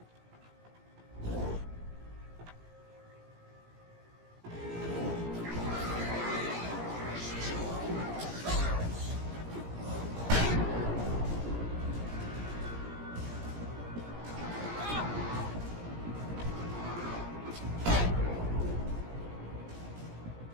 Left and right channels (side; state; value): left; late; 17 ms